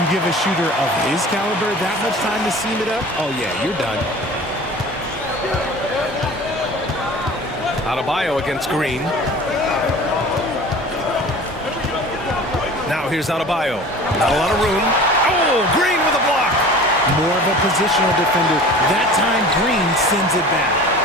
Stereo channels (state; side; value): normal; both; correlation 0.41